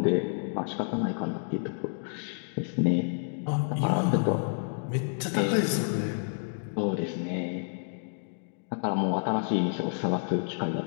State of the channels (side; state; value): right; silent; digital silence